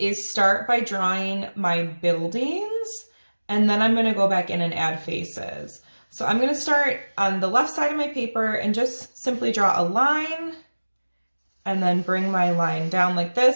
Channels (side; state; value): both; inverted; correlation -1.00